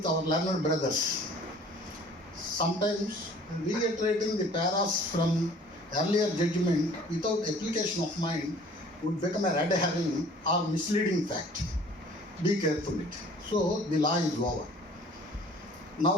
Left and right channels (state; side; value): normal; both; correlation 0.51